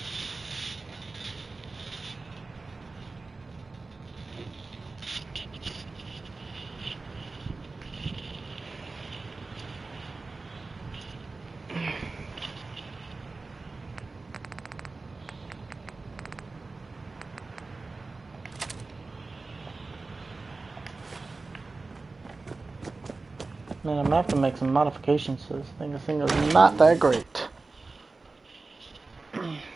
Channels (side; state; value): left; quieter; 3.7 dB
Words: Man, I'm gonna have to make some modifications to this thing. This thing is not that great.